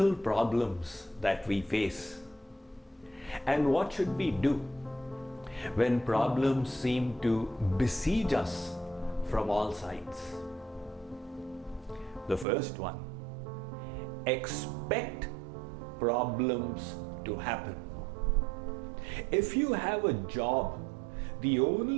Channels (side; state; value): left; drops out; at 12.5 s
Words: problems that we face? And what should we do when problems seem to besiege us from all sides? The first one, expect problems to happen. If you have a job, the